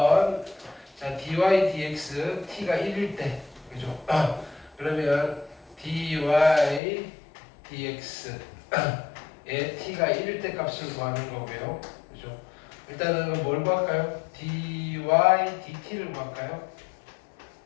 자, dy dx t가 1일 때. 그죠? 그러면 dy dx 에 t가 1일 때 값을 구하는 거고요. 그죠? 일단은 뭘 구할까요? dy dt를 구할까요?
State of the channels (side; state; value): right; drops out; at 6.8 s